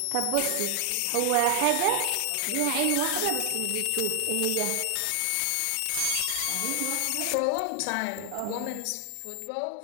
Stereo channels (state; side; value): different; both; correlation 0.00